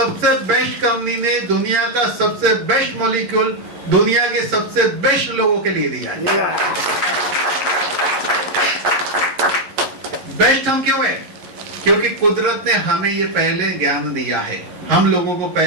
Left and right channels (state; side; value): late; left; 11 ms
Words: बेस्ट कंपनी ने दुनिया का सबसे बेस्ट मॉलिक्यूल दुनिया के सबसे बेस्ट लोगों के लिए दिया है। बेस्ट हम क्यों है? क्योंकि कुदरत ने हमें ये पहले ज्ञान दिया है, हम लोगों को